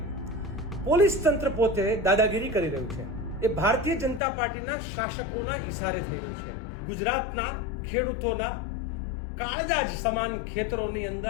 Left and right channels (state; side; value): drops out; right; at 4.2 s